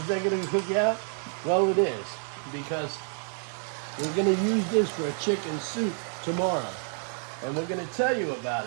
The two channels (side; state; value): left; silent; 55 dB below the other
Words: that gonna cook out? Well, it is, because we're gonna use this for a chicken soup tomorrow. And we're gonna tell you about